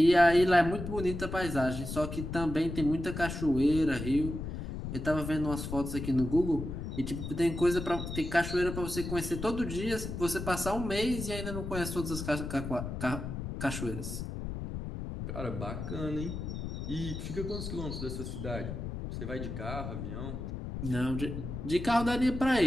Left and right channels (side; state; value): left; noise; rumble, 6 dB below the sound